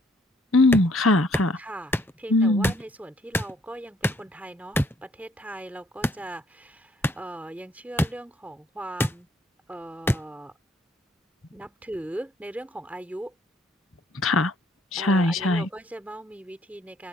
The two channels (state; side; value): normal; both; correlation 0.64